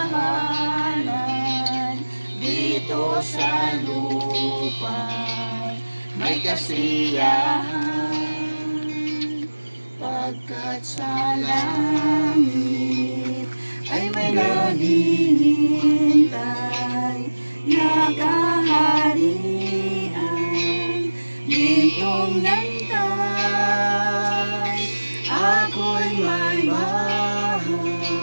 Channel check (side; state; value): both; inverted; correlation -1.00